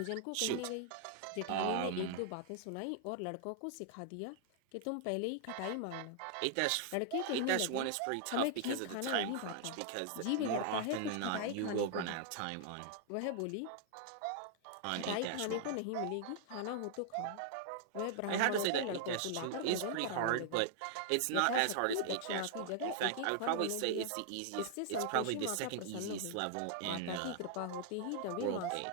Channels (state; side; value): different; both; correlation -0.01